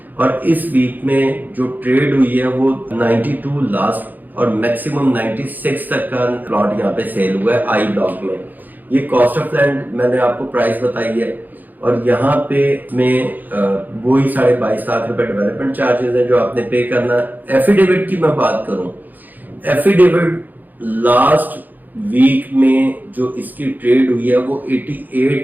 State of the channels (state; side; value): late; left; 0.085 ms